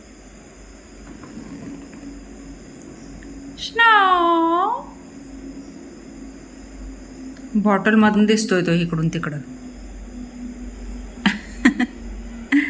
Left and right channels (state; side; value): identical; both; correlation 1.00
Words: बॉटल मधून दिसतोय तो इकडून तिकडं